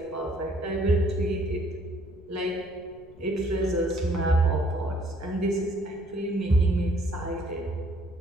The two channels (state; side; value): noise; left; rumble, 24 dB below the sound